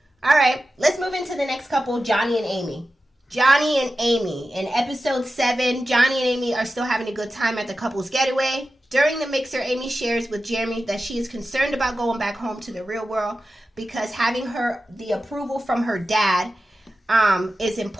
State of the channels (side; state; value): both; normal; correlation 0.93